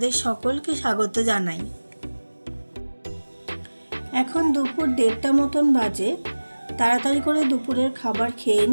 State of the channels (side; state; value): both; inverted; correlation -1.00